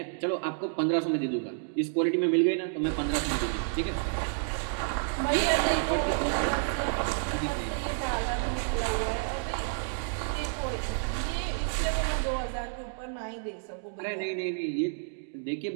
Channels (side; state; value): left; silent; digital silence